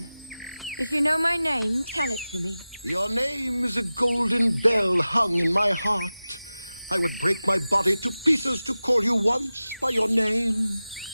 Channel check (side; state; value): both; inverted; correlation -0.96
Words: If you know my name, tell it to me. Your name is a golden bell hung in my heart. I would break my body to pieces to call you once by your name.